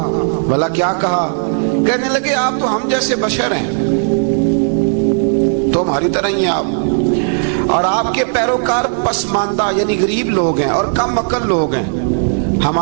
بھلا کیا کہا؟ کہنے لگے آپ تو ہم جیسے بشر ہیں، تو ہماری طرح ہی ہیں آپ، اور آپ کے پیروکار پسماندہ یعنی غریب لوگ ہیں اور کم عقل لوگ ہیں۔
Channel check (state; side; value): silent; left; digital silence